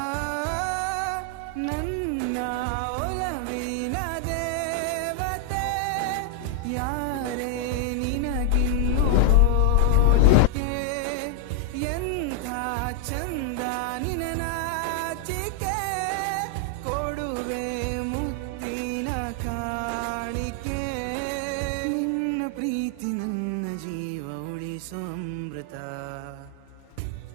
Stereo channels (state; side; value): different; both; correlation 0.00